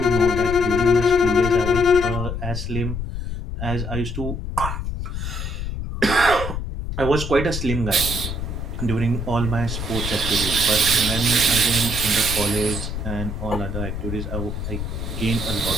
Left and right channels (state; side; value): noise; left; rumble, 5 dB below the sound